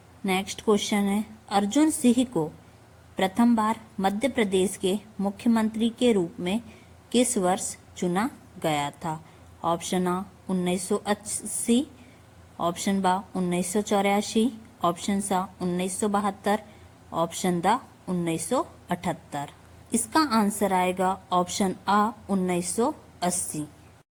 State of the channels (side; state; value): both; identical; correlation 1.00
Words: नेक्स्ट क्वेश्चन है, अर्जुन सिंह को प्रथम बार मध्य प्रदेश के मुख्यमंत्री के रूप में किस वर्ष चुना गया था? ऑप्शन आ 1980, ऑप्शन बा 1984, ऑप्शन सा 1972, ऑप्शन दा 1978। इसका आंसर आएगा ऑप्शन आ 1980।